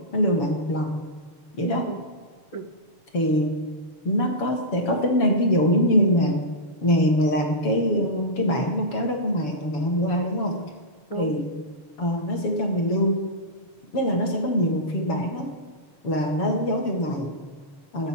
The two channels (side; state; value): right; late; 7.1 ms